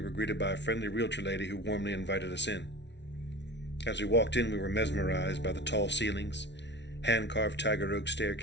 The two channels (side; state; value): right; late; 0.51 ms